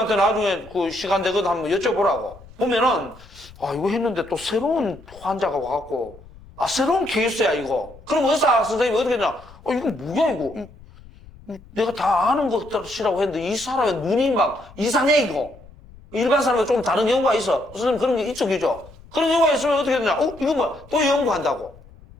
나중에 그 시간 되거든 한번 여쭤보라고. 보면은, 이거 했는데 또 새로운 환자가 와갖고, 새로운 케이스야, 이거. 그럼 의사 선생님이 어떻게 되냐? 이거 뭐야, 이거? 내가 다 아는 것들이라고 했는데, 이 사람의 눈이 막 이상해, 이거. 일반 사람과 좀 다른 경우가 있어. 선생님 그런 게 있죠. 그런 경우가 있으면 어떻게 되냐? 이거 뭐야? 또 연구한다고.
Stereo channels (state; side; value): noise; left; rumble, 22 dB below the sound